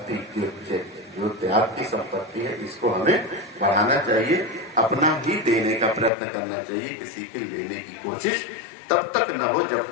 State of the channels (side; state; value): right; drops out; at 6.1 s